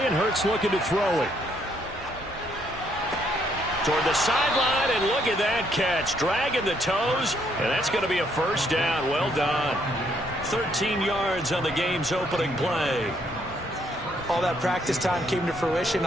and Hurts looking to throw it. Toward the sideline, and look at that catch. Dragging the toes, and that's going to be a first down. Well done. 13 yards on the game's opening play. All that practice time came to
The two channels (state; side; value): normal; both; correlation 0.71